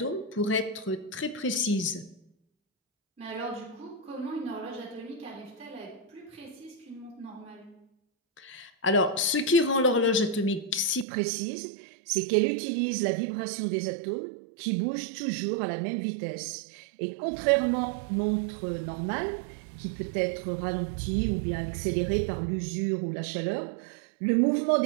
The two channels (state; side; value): drops out; left; at 11.1 s